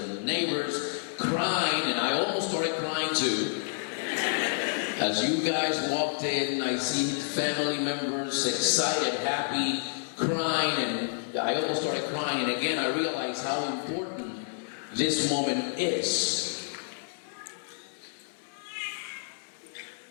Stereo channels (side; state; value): right; silent; digital silence